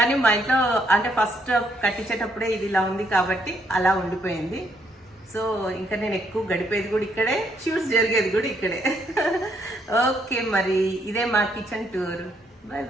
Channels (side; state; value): both; normal; correlation 0.72